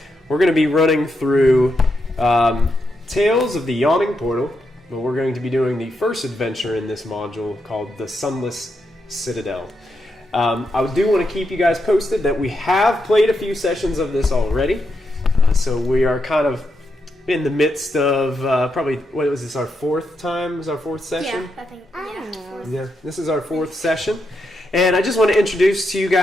We're going to be running through Tales of the Yawning Portal. But we're going to be doing the first adventure in this module called the Sunless Citadel. I do want to keep you guys posted that we have played a few sessions of this already. So we are kind of in the midst of probably, what was this, our fourth time? Is our fourth session? Yeah, I think, yeah. Yeah, this is our fourth session. And I just want to introduce to you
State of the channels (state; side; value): normal; both; correlation 0.83